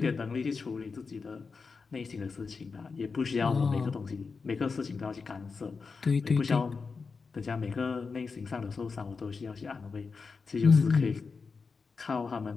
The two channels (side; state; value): right; quieter; 4.8 dB